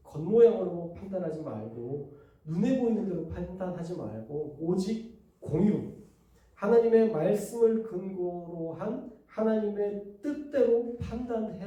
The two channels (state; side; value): identical; both; correlation 1.00